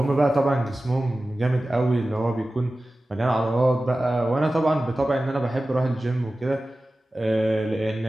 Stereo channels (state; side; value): normal; both; correlation 0.95